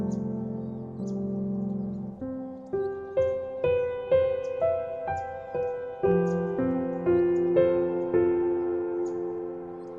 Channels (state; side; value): identical; both; correlation 1.00